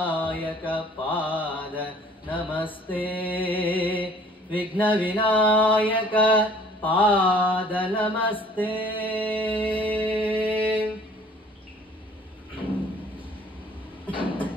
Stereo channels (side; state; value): both; normal; correlation 0.54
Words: ಪಾದ ನಮಸ್ತೆ ವಿಘ್ನ ವಿನಾಯಕ ಪಾದ ನಮಸ್ತೆ.